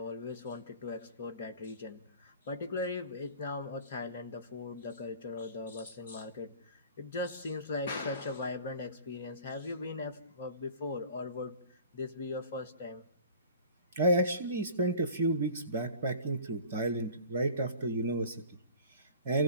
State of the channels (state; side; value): inverted; both; correlation -0.44